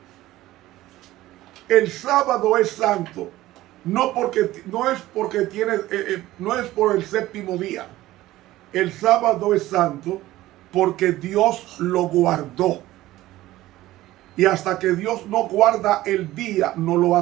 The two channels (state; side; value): quieter; left; 16.2 dB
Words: El sábado es santo, no es por el séptimo día. El sábado es santo porque Dios lo guardó. Y hasta que Dios no guarda el día, no lo